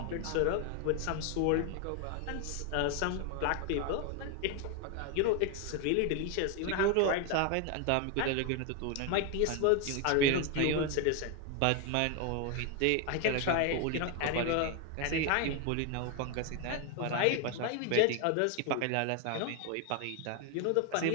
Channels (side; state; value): both; different; correlation 0.01